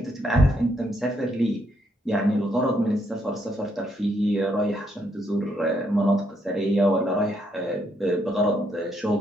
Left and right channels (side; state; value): both; normal; correlation 0.74